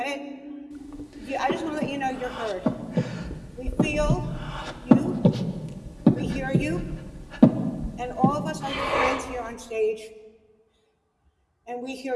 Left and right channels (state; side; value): identical; both; correlation 1.00